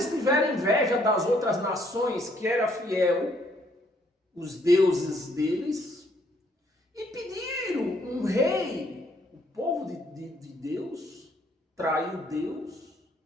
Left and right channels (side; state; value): both; normal; correlation 0.67